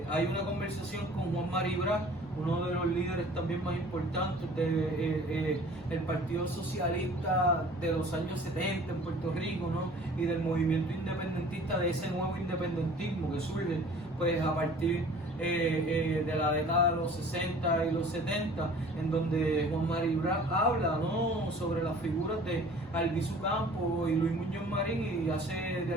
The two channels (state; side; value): normal; both; correlation 0.48